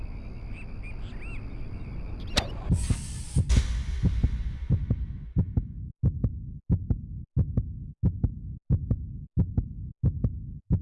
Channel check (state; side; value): identical; both; correlation 1.00